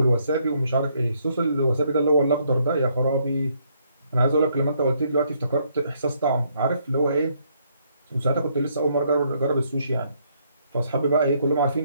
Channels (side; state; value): both; inverted; correlation -0.71